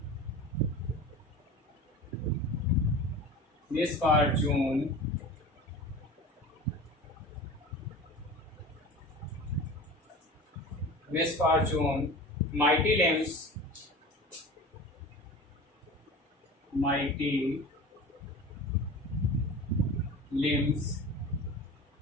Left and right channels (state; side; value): normal; both; correlation 0.35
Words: misfortune misfortune, mighty limbs, mighty limbs,